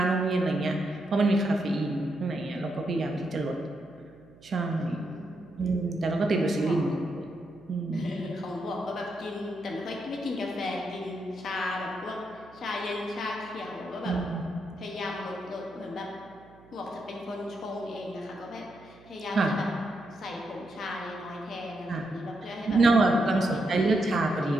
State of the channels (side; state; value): right; noise; hum, 24 dB below the sound